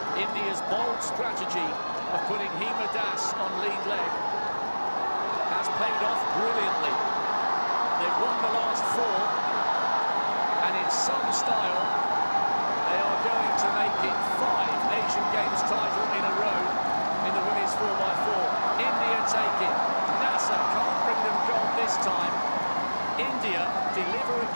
India's bold strategy of putting Hima Das on lead leg has paid off brilliantly. They've won the last 4, and in some style, they are going to make it 5 Asian Games title in a row in the women's 4x4. India take it. Nasser can't bring them gold this time. India deliver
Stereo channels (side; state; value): both; inverted; correlation -1.00